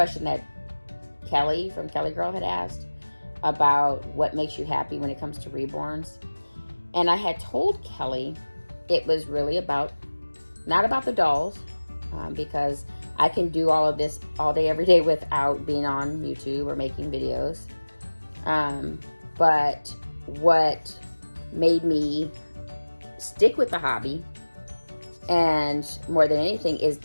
that Kelly from Kelly Girl had asked about what makes you happy when it comes to reborns. And I had told Kelly it was really not about the dolls, because I can do all of this all day, every day without being on YouTube or making videos. But what made me stick with the hobby, and more than anything, is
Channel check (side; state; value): both; inverted; correlation -1.00